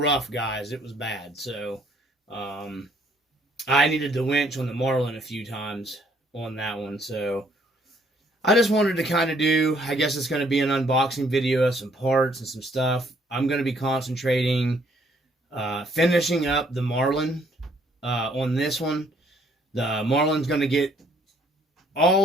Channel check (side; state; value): both; normal; correlation 0.65